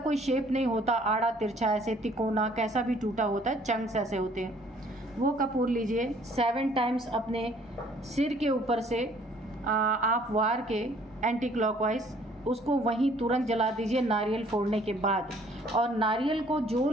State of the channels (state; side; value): normal; both; correlation 0.59